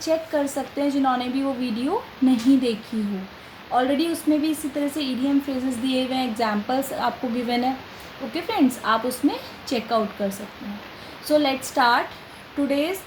कर सकते हैं जिन्होंने भी वो वीडियो नहीं देखी हो. ऑलरेडी उसमें भी इसी तरह से इडियम फ्रेजेस दिए हुए हैं, एग्जाम्पल्स आपको गिवन है. ओके फ्रेंड्स, आप उसमें चेकआउट कर सकते हैं. So let's start today's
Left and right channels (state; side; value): identical; both; correlation 1.00